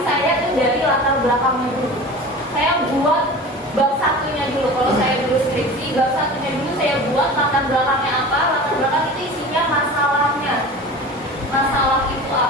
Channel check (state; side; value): normal; both; correlation 0.36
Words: saya tuh dari latar belakangnya dulu. Saya buat bab satunya dulu. Kalau saya dulu skripsi, bab satunya dulu saya buat latar belakangnya apa. Latar belakang itu isinya masalahnya. Masalah itu